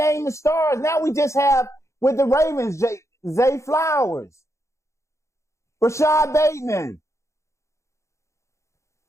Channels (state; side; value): late; right; 0.14 ms